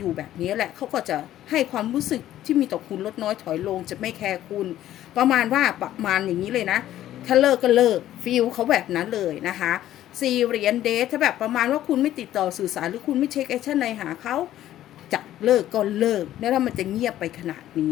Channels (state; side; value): quieter; right; 12.9 dB